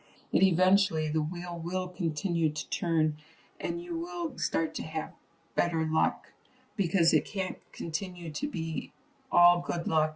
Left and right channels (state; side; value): identical; both; correlation 1.00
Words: it eventually, the wheel will continue to turn and you will start to have better luck, because it can't continue to be all good